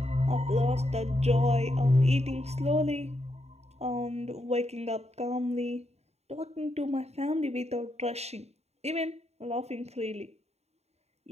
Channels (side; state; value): left; late; 0.31 ms